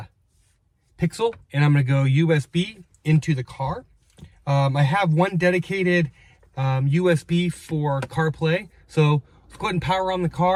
Pixel, and I'm going to go USB into the car. I have one dedicated USB for CarPlay, so let's go ahead and power on the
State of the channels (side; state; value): both; identical; correlation 1.00